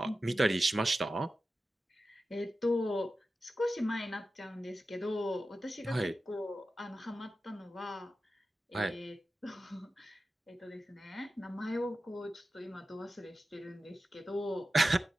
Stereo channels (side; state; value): both; normal; correlation 0.93